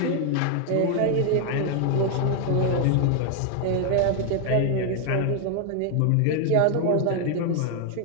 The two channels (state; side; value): different; both; correlation 0.00